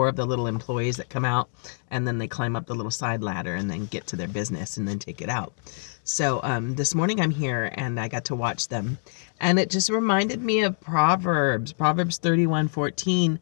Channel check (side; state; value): right; silent; digital silence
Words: of the little employees that come out, and then they climb up the little side ladder and then get to their business and then take it out. So this morning I'm here and I got to watch them. And it just reminded me of Proverbs 31:14,